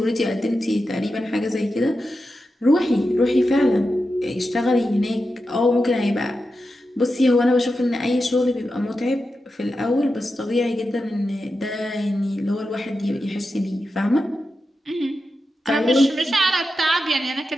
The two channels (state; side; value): normal; both; correlation 0.90